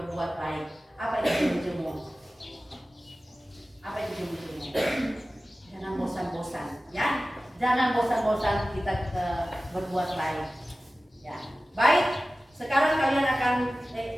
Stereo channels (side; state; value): both; normal; correlation 0.96